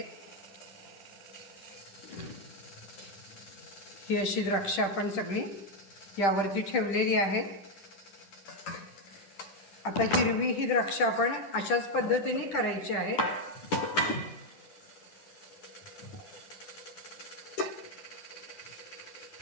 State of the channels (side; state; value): right; late; 10 ms